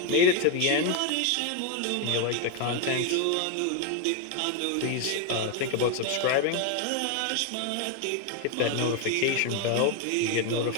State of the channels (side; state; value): both; different; correlation 0.01